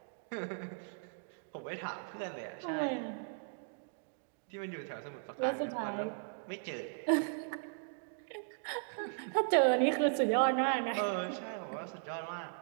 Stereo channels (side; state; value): left; silent; digital silence